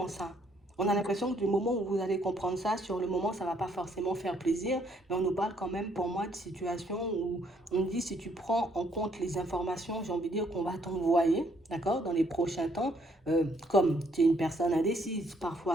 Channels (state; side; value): normal; both; correlation 0.68